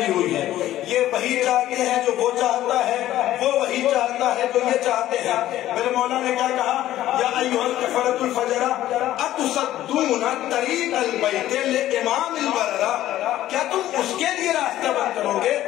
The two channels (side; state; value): right; quieter; 13.7 dB